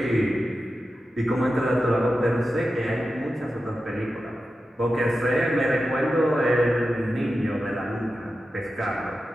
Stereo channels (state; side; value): normal; both; correlation 0.91